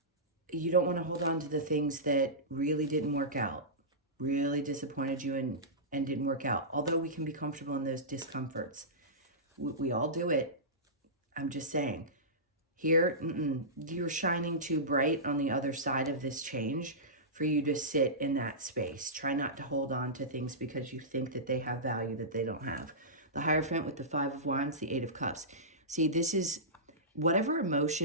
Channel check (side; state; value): both; normal; correlation -0.17